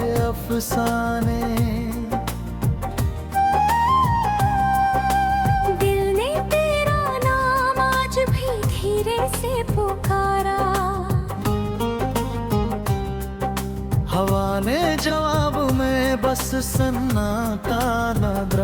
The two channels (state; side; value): identical; both; correlation 1.00